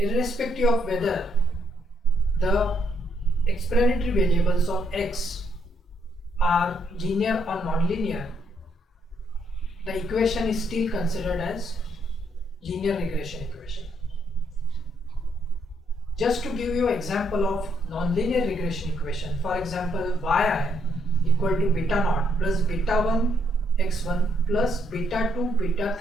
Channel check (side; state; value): both; normal; correlation 0.73